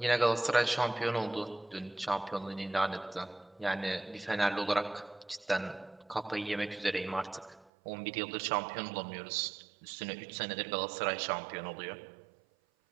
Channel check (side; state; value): left; drops out; at 7.7 s